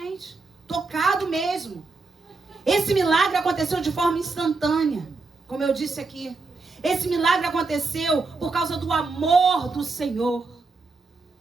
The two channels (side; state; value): left; quieter; 3.9 dB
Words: Tocado mesmo. Esse milagre aconteceu de forma instantânea, como eu disse aqui. Esse milagre aconteceu por causa do amor do Senhor.